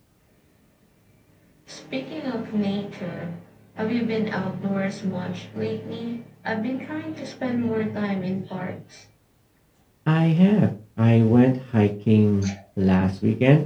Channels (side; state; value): both; identical; correlation 1.00